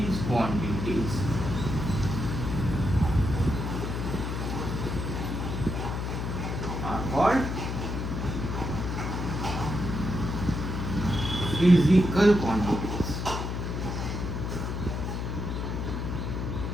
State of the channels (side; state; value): left; noise; hum, 3 dB below the sound